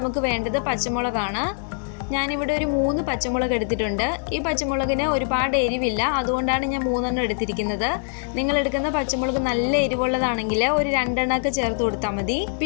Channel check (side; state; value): right; silent; 63 dB below the other